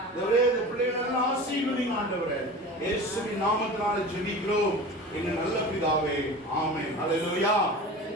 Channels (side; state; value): both; normal; correlation 0.34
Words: ஆண்டவரே இந்த பிள்ளைகளை ஆசீர்வதிங்க. ஆண்டவரே இயேசுவின் நாமத்தினால ஜெபிக்கிறோம் எங்கள் நல்ல பிதாவே. ஆமென். ஹல்லேலூயா.